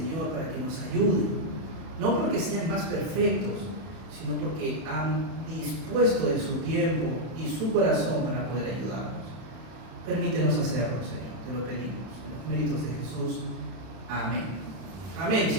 para que nos ayuden, no porque sean más perfectos, sino porque han dispuesto de su tiempo y su corazón para poder ayudarnos. Permítenos hacerlo, Señor, te lo pedimos, en los méritos de Jesús. Amén. Amén,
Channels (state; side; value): late; left; 31 ms